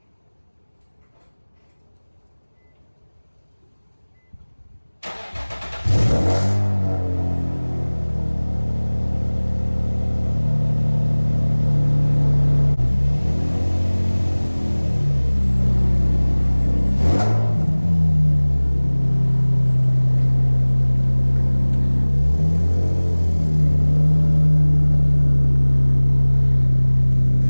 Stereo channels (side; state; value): both; inverted; correlation -1.00